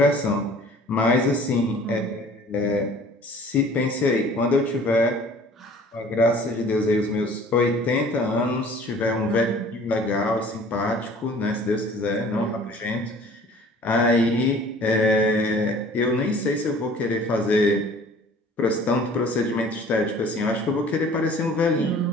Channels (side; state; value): both; normal; correlation 0.50